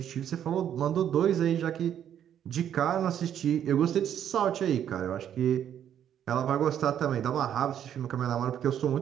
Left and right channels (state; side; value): quieter; left; 9.8 dB